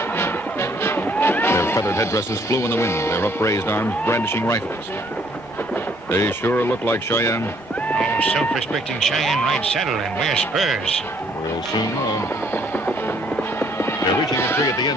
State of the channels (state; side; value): normal; both; correlation 0.64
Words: Their feathered headdresses flew in the wind, their upraised arms brandishing rifles. They sure look like Cheyenne. Oh, self-respecting Cheyenne ride saddle and wear spurs. We'll soon know. They're reaching a tree at the